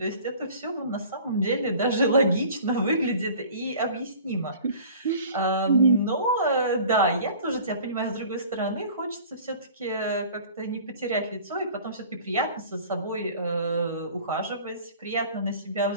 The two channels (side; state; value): both; inverted; correlation -0.46